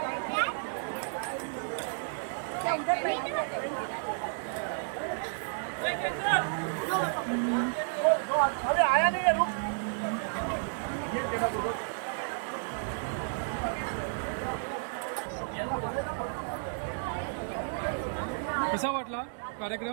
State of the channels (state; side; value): silent; left; digital silence